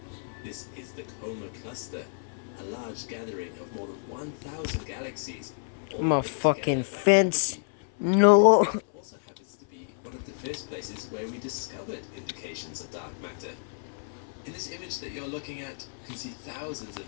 This is the Coma Cluster, a large gathering of more than 1,000 galaxies. I'm a fucking fence. No. It also happens to be one of the first places where we discovered indications of dark matter. In this image that you're looking at, you can see thousands of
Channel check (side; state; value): right; silent; 56 dB below the other